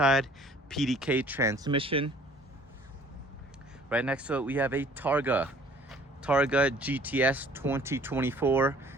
PDK transmission. Right next to it, we have a Targa GTS 2024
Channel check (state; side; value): normal; both; correlation 0.54